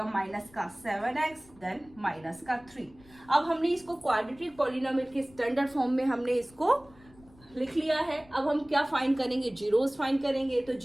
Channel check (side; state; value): left; noise; rumble, 26 dB below the sound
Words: माइनस का 7x, देन माइनस का 3। अब हमने इसको क्वाड्रेटिक पॉलिनोमियल के स्टैंडर्ड फॉर्म में हमने इसको लिख लिया है। अब हम क्या फाइंड करेंगे, जीरोस फाइंड करेंगे। तो